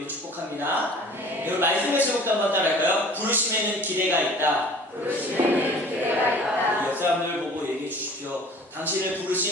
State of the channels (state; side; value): normal; both; correlation 0.47